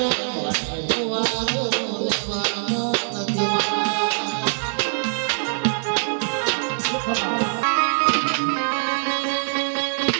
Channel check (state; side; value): silent; left; 63 dB below the other